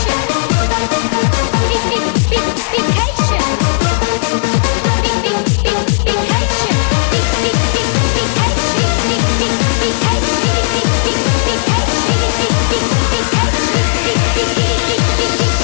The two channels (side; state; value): right; silent; digital silence